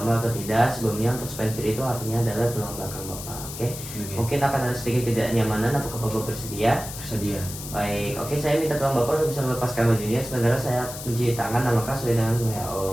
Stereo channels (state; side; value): noise; left; hiss, 10 dB below the sound